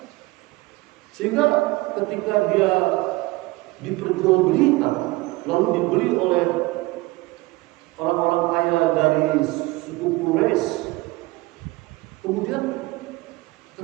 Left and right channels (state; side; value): quieter; left; 21.6 dB